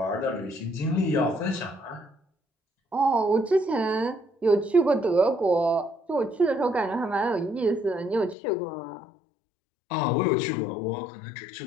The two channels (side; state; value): right; drops out; at 8.3 s